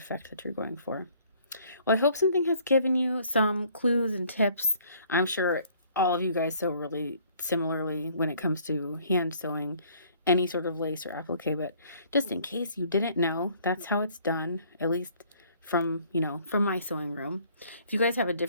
that you're going for. Well, I hope something has given you some clues and tips. I'm sure all of you guys sew really similarly when it comes to hand sewing any sort of lace or applique, but just in case you didn't know, that's how it's done, at least from, you know, from my sewing room. If you guys have a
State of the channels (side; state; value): both; inverted; correlation -0.59